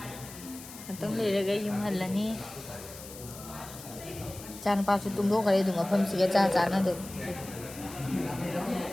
Tông ꯂꯩꯔꯒ ꯌꯨꯝ ꯍꯜꯂꯅꯤ ꯏꯆꯥ ꯅꯨꯄꯥꯁꯨ ꯇꯨꯝꯊꯣꯛꯈ꯭ꯔꯦ ꯑꯗꯨꯝ ꯃꯐꯝꯁꯤꯒ ꯆꯥꯟꯅꯗꯦ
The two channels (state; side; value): noise; left; hiss, 15 dB below the sound